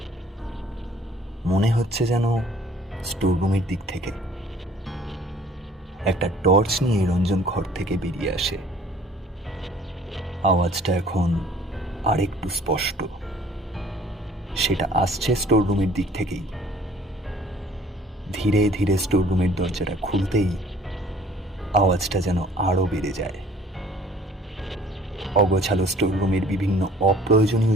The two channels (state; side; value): normal; both; correlation 0.55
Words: মনে হচ্ছে যেন স্টোররুমের দিক থেকে। একটা টর্চ নিয়ে রঞ্জন ঘর থেকে বেরিয়ে আসে। আওয়াজটা এখন আরেকটু স্পষ্ট। সেটা আসছে স্টোররুমের দিক থেকেই। ধীরে ধীরে স্টোররুমের দরজাটা খুলতেই আওয়াজটা যেন আরো বেড়ে যায়। অগোছালো স্টোররুমের বিভিন্ন